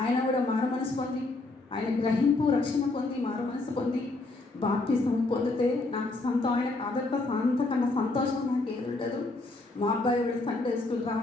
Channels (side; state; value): right; quieter; 3.2 dB